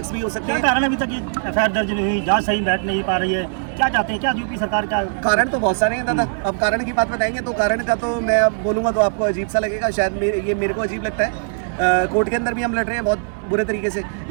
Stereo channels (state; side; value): silent; left; 61 dB below the other